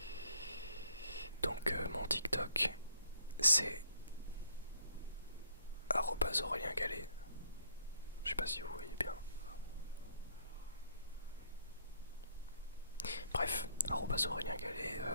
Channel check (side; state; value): both; inverted; correlation -0.65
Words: Donc mon TikTok c'est Aurélien Gallet. Je sais pas si vous voyez bien. Bref, Aurélien Gallet,